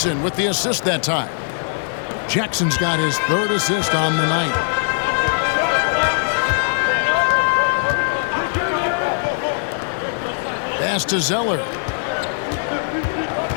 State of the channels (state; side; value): silent; right; digital silence